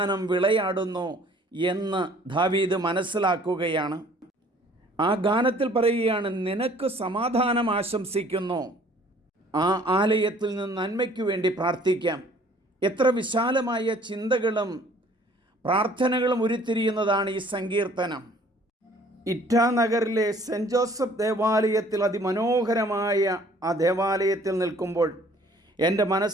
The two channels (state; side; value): normal; both; correlation 0.55